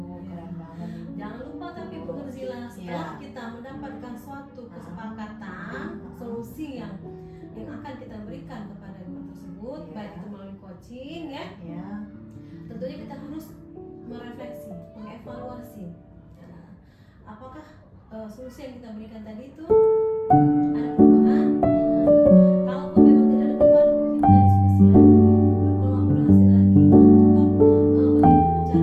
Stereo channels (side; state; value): both; identical; correlation 1.00